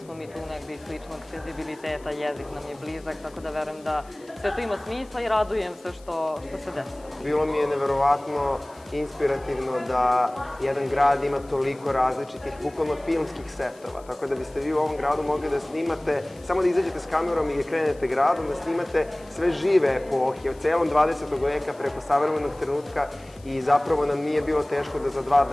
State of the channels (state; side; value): noise; left; hiss, 27 dB below the sound